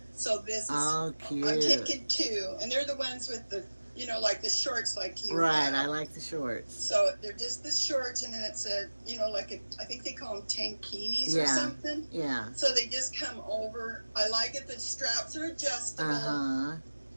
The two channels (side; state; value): both; inverted; correlation -1.00